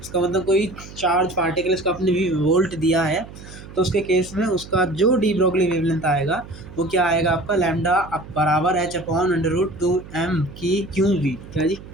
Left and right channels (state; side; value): noise; right; hum, 16 dB below the sound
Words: इसका मतलब कोई चार्ज पार्टिकल इसका आपने v वोल्ट दिया है तो उसके केस में उसका जो डी ब्रोगली वेवलेंथ आएगा वो क्या आएगा, आपका लैम्डा बराबर h/√2m की QV, क्या जी,